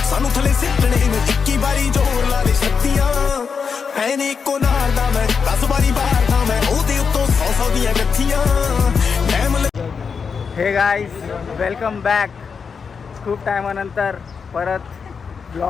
ਸਾਨੂੰ ਥੱਲੇ ਸਿੱਟਣੇ ਨੂੰ, 21 ਵਾਰੀ ਜ਼ੋਰ ਲਾ ਦੇ ਛੱਤੀਆਂ। ਹੈ ਨੀ ਇੱਕੋ ਨਾਲ ਦਾ ਮੈਂ, 10 ਵਾਰੀ ਬਾਹਰ ਦਾ ਮੈਂ, ਉਹਦੇ ਉੱਤੋਂ 100 ਦੀਆਂ ਗੱਥੀਆਂ। हे गाईज, वेलकम बॅक. खूप टायमानंतर परत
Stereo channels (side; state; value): right; quieter; 5.8 dB